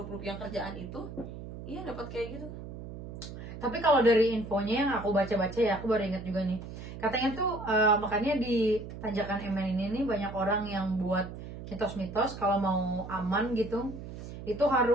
yang kerjaan itu, iya dapat kayak gitu. Tapi kalau dari infonya yang aku baca-baca ya, aku baru ingat juga nih. Katanya tuh makanya di tanjakan MN ini nih banyak orang yang buat mitos-mitos kalau mau aman gitu, itu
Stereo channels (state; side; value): noise; right; hum, 11 dB below the sound